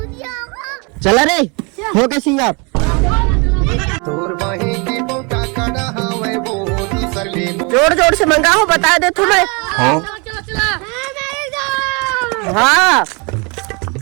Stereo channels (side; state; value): left; quieter; 31.3 dB